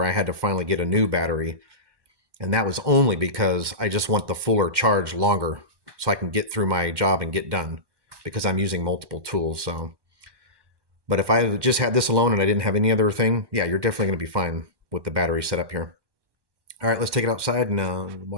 I had to finally get a new battery, and that was only because I just want the fuller charge longer so I can get through my job and get done because I'm using multiple tools. So, but if I just had this alone and I didn't have any other thing, yeah, you're definitely going to be fine with the battery set up here. All right, let's take it outside and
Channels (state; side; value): late; left; 1.1 ms